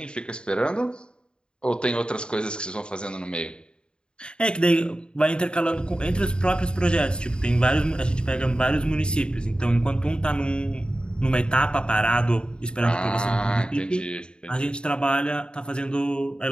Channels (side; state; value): right; late; 0.051 ms